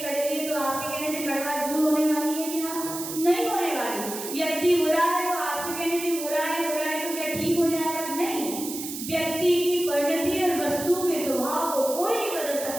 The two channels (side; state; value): right; noise; hiss, 8 dB below the sound